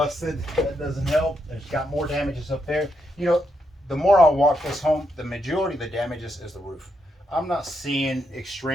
That doesn't help. There's got more damages up there. You know, the more I walk this home, the majority of the damages is the roof. I'm not seeing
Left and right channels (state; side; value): normal; both; correlation 0.80